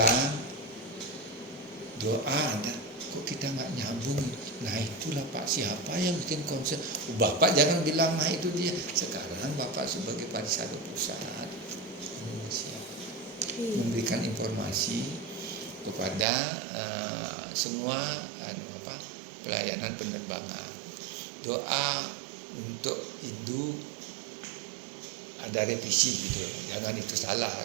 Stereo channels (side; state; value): left; drops out; at 16.2 s